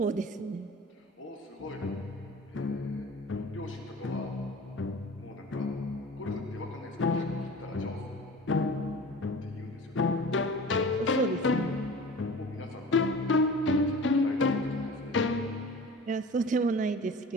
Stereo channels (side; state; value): both; normal; correlation 0.39